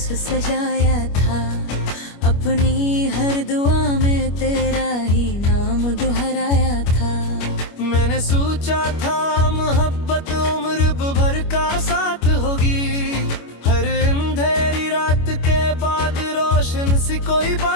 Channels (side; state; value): right; late; 25 ms